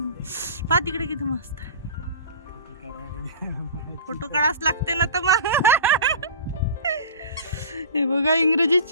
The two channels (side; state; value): both; inverted; correlation -0.39